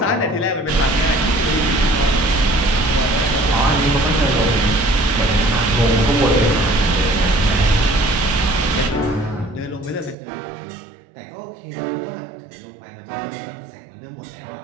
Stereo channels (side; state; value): left; drops out; at 10.2 s